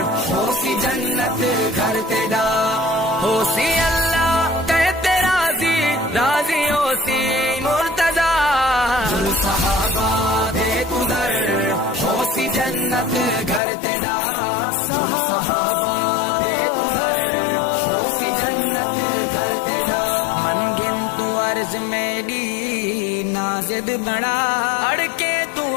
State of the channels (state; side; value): drops out; right; at 13.6 s